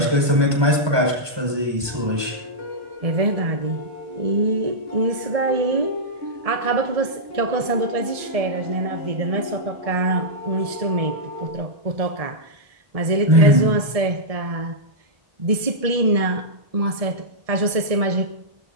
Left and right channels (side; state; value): left; late; 1.7 ms